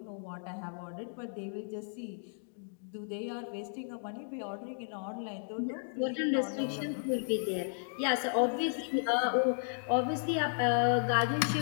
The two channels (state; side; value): silent; right; digital silence